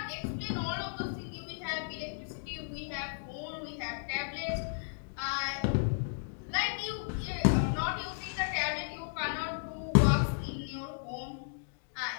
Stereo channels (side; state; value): right; silent; digital silence